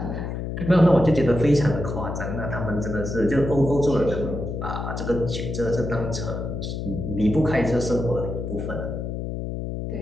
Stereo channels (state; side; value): noise; left; hum, 4 dB below the sound